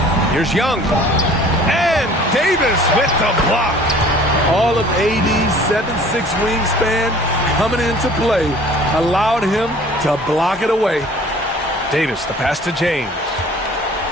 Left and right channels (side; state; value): both; normal; correlation 0.50